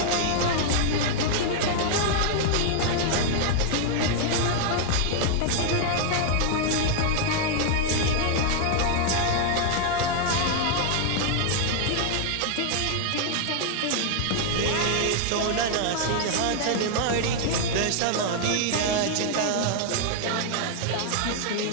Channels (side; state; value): both; different; correlation 0.00